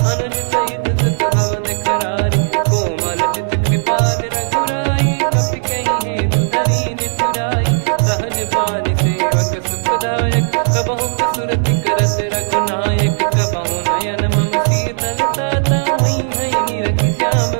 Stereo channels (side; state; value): left; silent; digital silence